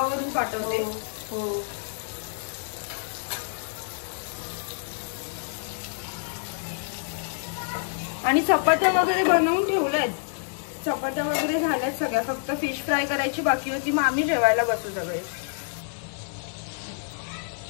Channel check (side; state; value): right; silent; digital silence